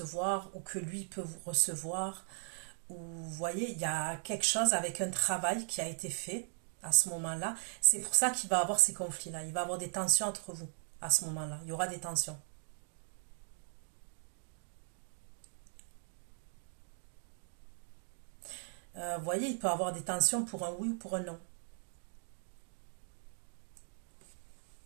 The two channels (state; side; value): silent; left; 52 dB below the other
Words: ou que lui peut vous recevoir. Ou vous voyez, il y a quelque chose avec un travail qui a été fait à ce moment-là. C'est pour ça qu'il va avoir ces conflits-là. Il va avoir des tensions entre vous à ce moment-là. Il y aura des tensions. Vous voyez, il peut avoir des tensions pour un oui ou pour un non.